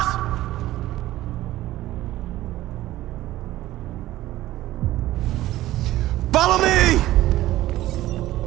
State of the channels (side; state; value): left; quieter; 15.4 dB